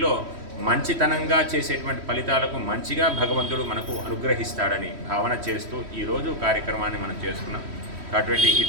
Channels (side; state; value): left; late; 3.1 ms